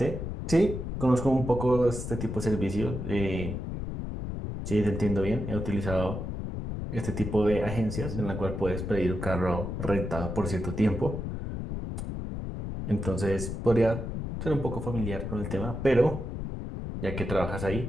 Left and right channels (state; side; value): noise; left; rumble, 5 dB below the sound